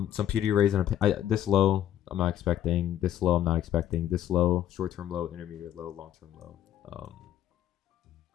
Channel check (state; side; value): quieter; right; 11.4 dB